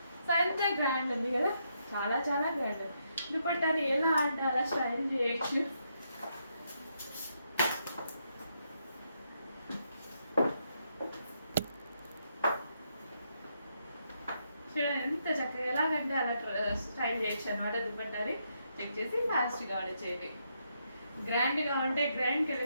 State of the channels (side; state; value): both; inverted; correlation -0.78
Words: సో ఎంత గ్రాండ్ ఉంది కదా, చాలా గ్రాండ్. దుపట్టాని ఎలా అంటే అలా స్టైల్ చేయొచ్చు. ఎంత చక్కగా ఎలాగంటే అలా స్టైల్ చేయొచ్చు అనమాట దుపట్టాని. చెక్ చేసి ఫాస్ట్గా ఆర్డర్ చేయండి. గ్రాండ్గా ఉంటే గ్రాండ్